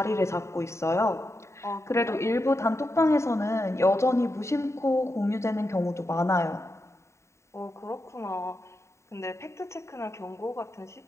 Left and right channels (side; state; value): right; late; 0.14 ms